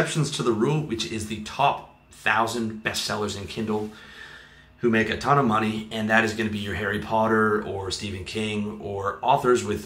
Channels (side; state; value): both; identical; correlation 1.00